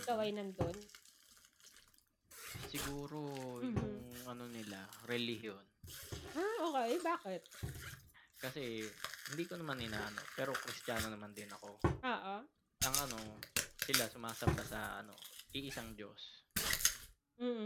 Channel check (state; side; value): identical; both; correlation 1.00